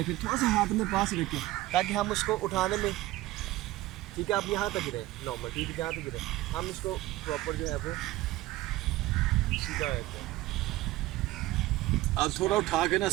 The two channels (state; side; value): quieter; left; 17.3 dB